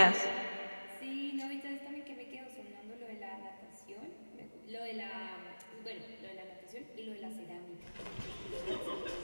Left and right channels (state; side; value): inverted; both; correlation -1.00